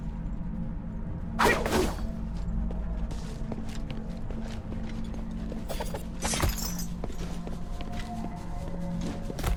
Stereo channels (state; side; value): identical; both; correlation 1.00